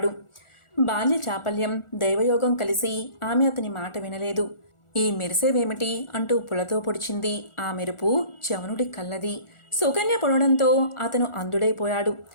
బాల్య చాపల్యం, దైవయోగం కలిసి ఆమె అతని మాట వినలేదు. ఈ మెరిసేవేమిటి అంటూ పులతో పొడిచింది. ఆ మెరుపు చవనుడి కళ్ళది. సుకన్య పొడడంతో అతను అందుడైపోయాడు.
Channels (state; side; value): late; right; 1.4 ms